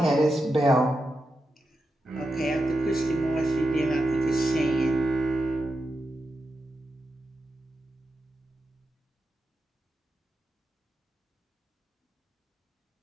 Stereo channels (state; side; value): normal; both; correlation 0.88